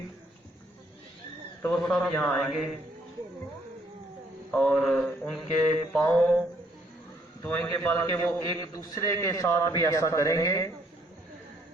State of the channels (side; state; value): both; normal; correlation 0.67